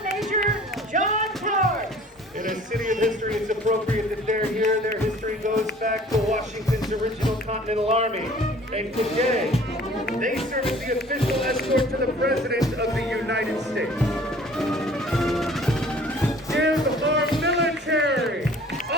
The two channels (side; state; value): both; normal; correlation 0.50